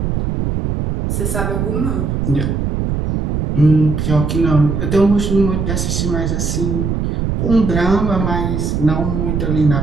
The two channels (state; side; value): noise; right; rumble, 1 dB below the sound